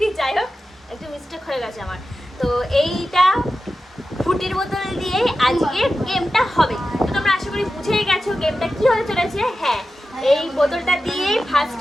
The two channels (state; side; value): normal; both; correlation 0.92